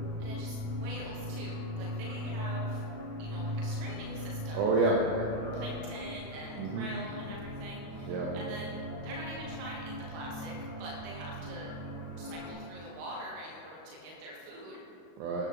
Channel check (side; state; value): left; late; 37 ms